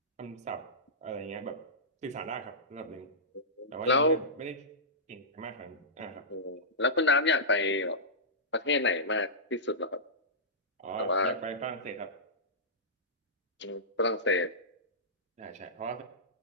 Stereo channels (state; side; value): normal; both; correlation -0.16